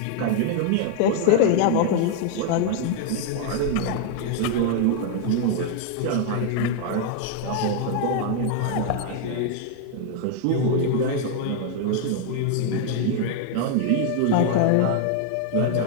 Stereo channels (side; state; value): both; different; correlation 0.00